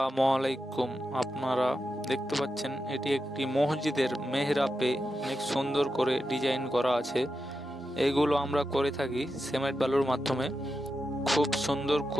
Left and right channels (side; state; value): both; normal; correlation 0.89